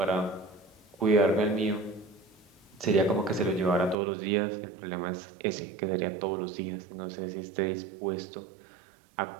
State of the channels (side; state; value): left; drops out; at 4.0 s